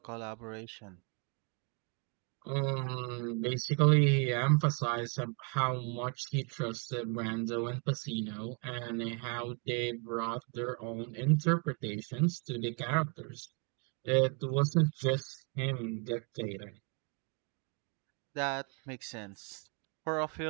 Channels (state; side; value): quieter; left; 37.3 dB